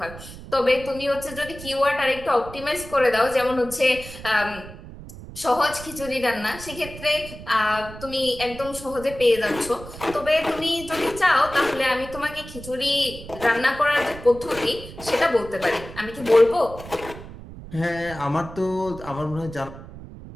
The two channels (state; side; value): noise; right; rumble, 14 dB below the sound